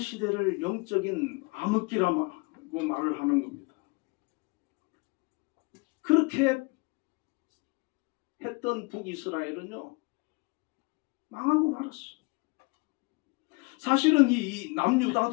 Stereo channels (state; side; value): quieter; right; 28.3 dB